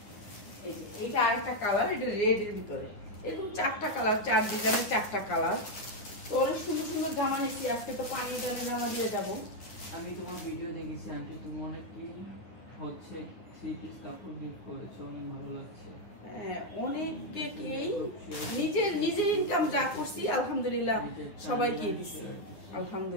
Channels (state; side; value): late; right; 9.6 ms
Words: এইটা আরেকটা কালার, এটা রেড এর ভিতরে। এরকম 4টা কালার, 4 ডিজাইনের 4টা কালার। তো অনেক সুন্দর সুন্দর জামা নিচ্ছি আজকে, তো পানি জামা দিয়ে যাবো। আমি তোমার ভিডিও দেখেছি আন্টি, তুমি অনেক কি হচ্ছে 3 পিস কাপড় গিফট করেছো, অনেক ভালো লাগছে। হ্যাঁ, অনেককেই নিজের ইনকাম যা করছি আলহামদুলিল্লাহ সবাইকে দিচ্ছি